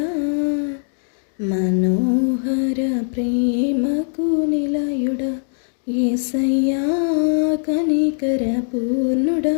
మనోహర ప్రేమకు నిలయుడా. యేసయ్య కనికర పూర్ణుడా,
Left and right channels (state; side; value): silent; right; digital silence